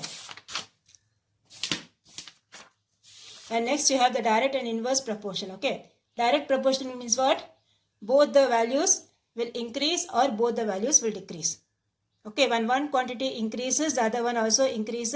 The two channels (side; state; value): both; identical; correlation 1.00